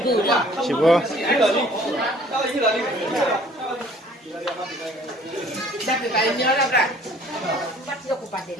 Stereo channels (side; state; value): both; normal; correlation 0.54